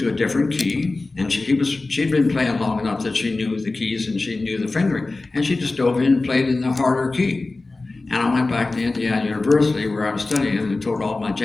a different key, and she'd been playing long enough that she knew the keys and she knew the fingering, and she just dove in and played in the harder key. And I went back to Indiana University where I was studying and told all my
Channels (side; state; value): right; quieter; 3.3 dB